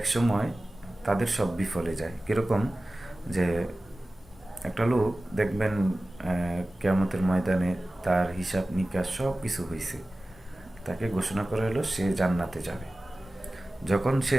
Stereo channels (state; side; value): normal; both; correlation 0.96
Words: তাদের সব বিফলে যায়। কীরকম? যে একটা লোক দেখবেন কিয়ামতের ময়দানে তার হিসাব নিকাশ সব কিছু হয়েছে, তাকে ঘোষণা করা হলো সে জান্নাতে যাবে। যখন সে